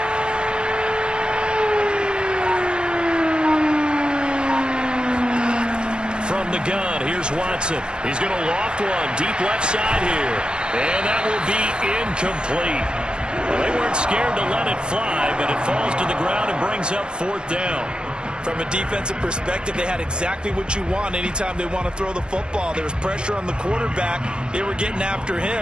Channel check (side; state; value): left; late; 0.049 ms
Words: From the gun, here's Watson. He's going to loft one deep left side here. And that will be incomplete. Well, they weren't scared to let it fly, but it falls to the ground and brings up 4th down. From a defensive perspective, they had exactly what you want anytime they want to throw the football. There was pressure on the quarterback. They were getting after